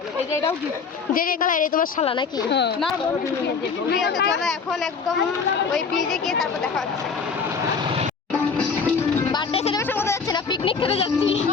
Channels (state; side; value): quieter; right; 5.4 dB